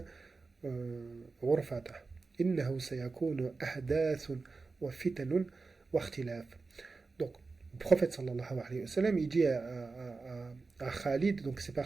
غرفة إنه سيكون أحداث وفتن واختلاف. Donc le prophète sallallahu alayhi wa sallam il dit à Khalid, donc c'est pas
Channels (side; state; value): left; quieter; 4.1 dB